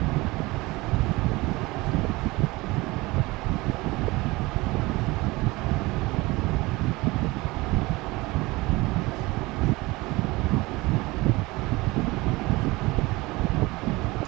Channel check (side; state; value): left; quieter; 21.9 dB